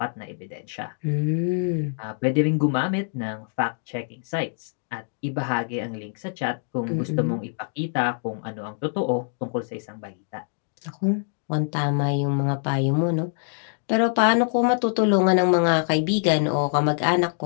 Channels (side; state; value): right; silent; digital silence